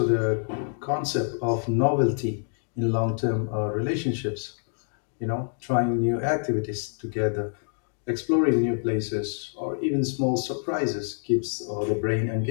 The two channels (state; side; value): silent; right; digital silence